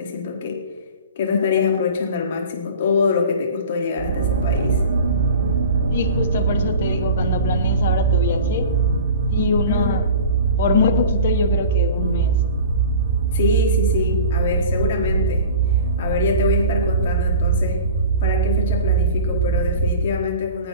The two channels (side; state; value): both; inverted; correlation -0.39